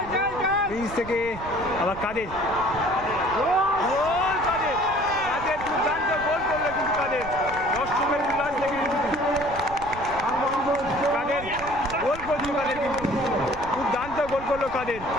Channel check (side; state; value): right; noise; rumble, 13 dB below the sound